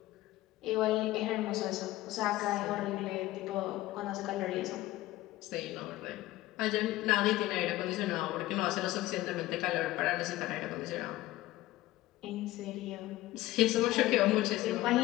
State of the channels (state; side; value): quieter; right; 16.7 dB